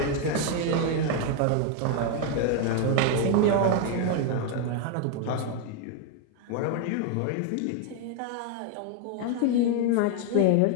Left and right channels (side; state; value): both; different; correlation 0.01